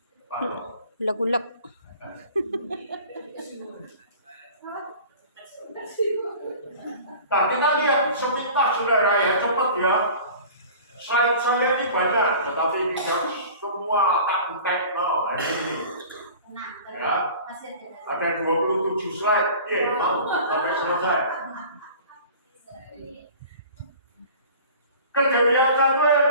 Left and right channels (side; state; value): both; inverted; correlation -0.42